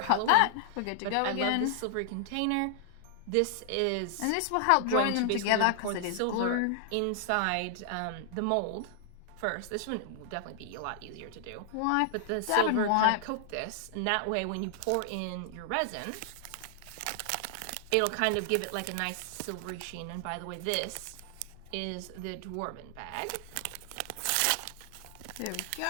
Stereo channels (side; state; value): both; different; correlation 0.00